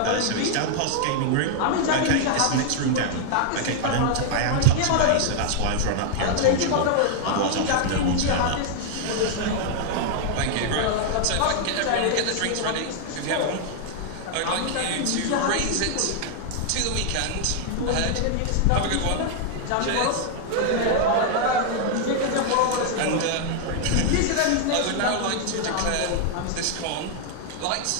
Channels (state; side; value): different; both; correlation 0.00